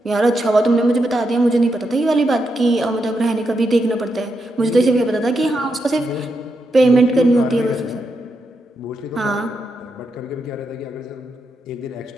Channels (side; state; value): both; normal; correlation 0.84